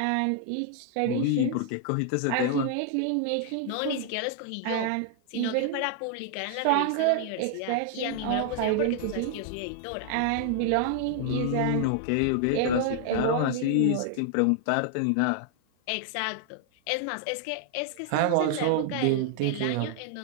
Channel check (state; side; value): different; both; correlation 0.00